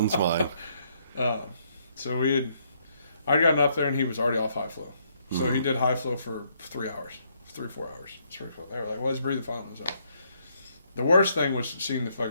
mine. So I'd gotten up there and he was already off high flow. So he did high flow for 3 hours, 3-4 hours. Springfield. They were like, well, he's breathing fine on his own. The worst thing was seeing the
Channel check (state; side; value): inverted; both; correlation -0.72